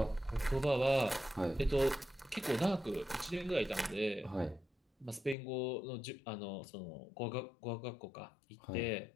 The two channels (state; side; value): drops out; right; at 5.4 s